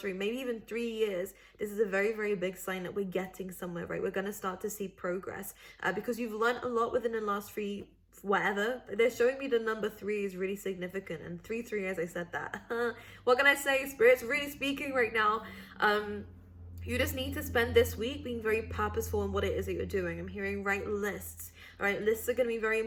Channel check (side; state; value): both; identical; correlation 1.00